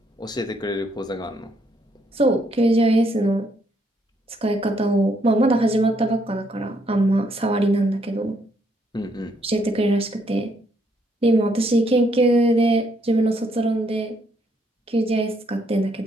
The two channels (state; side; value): normal; both; correlation 0.72